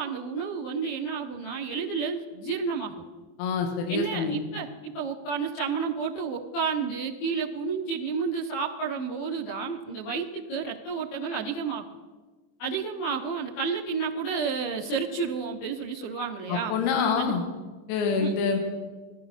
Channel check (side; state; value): right; late; 24 ms